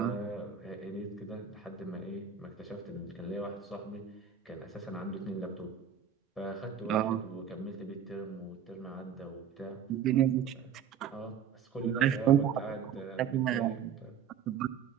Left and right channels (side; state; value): left; quieter; 8.0 dB